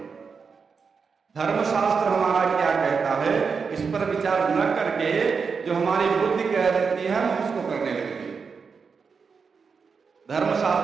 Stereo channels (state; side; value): quieter; left; 5.5 dB